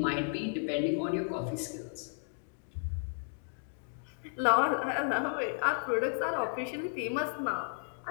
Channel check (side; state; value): right; silent; digital silence